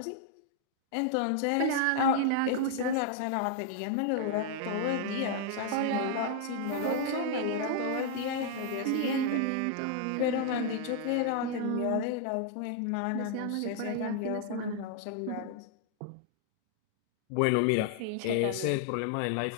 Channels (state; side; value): different; both; correlation 0.00